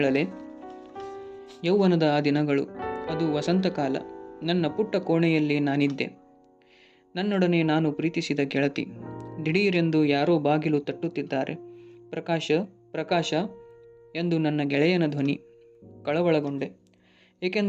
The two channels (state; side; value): identical; both; correlation 1.00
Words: ಯೌವನದ ಆ ದಿನಗಳು. ಅದು ವಸಂತಕಾಲ. ನನ್ನ ಪುಟ್ಟ ಕೋಣೆಯಲ್ಲಿ ನಾನಿದ್ದೆ. ನನ್ನೊಡನೆ ನಾನು ಪ್ರೀತಿಸಿದ ಗೆಳತಿ. ದಿಢೀರೆಂದು ಯಾರೋ ಬಾಗಿಲು ತಟ್ಟುತ್ತಿದ್ದಾರೆ. ಪ್ರಕಾಶ ಪ್ರಕಾಶ ಎಂದು ನನ್ನ ಗೆಳೆಯನ ಧ್ವನಿ. ಕಳವಳಗೊಂಡೆ.